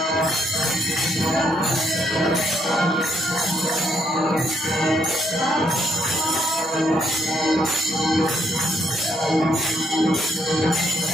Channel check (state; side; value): normal; both; correlation 0.73